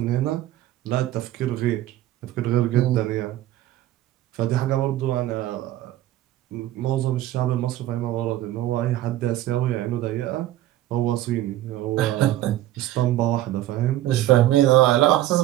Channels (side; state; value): left; quieter; 14.2 dB